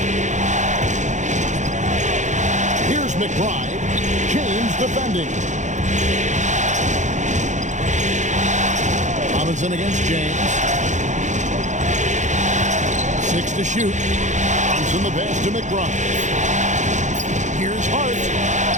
Here's McBride. James defending. Robinson against James. 6 to shoot. Brunson the pass to McBride. Here's Hart.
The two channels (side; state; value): left; late; 0.35 ms